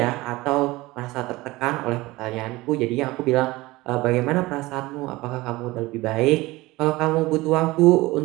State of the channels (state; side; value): quieter; left; 20.2 dB